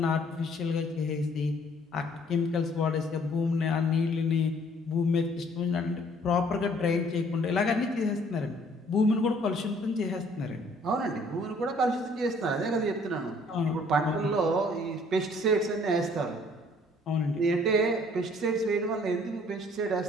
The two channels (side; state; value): both; normal; correlation 0.59